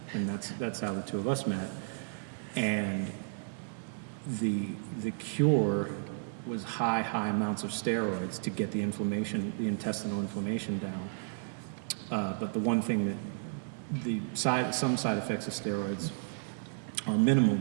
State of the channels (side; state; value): left; silent; digital silence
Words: and that's how the two of us met. And the cure was high amounts of steroids to get the intestinal inflammation down. But the one thing that some side effects of steroids are minimal,